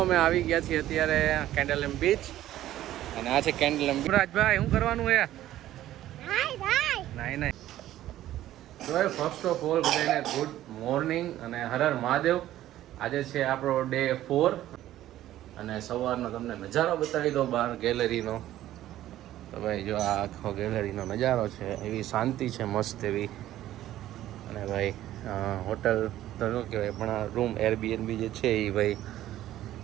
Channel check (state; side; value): quieter; left; 13.6 dB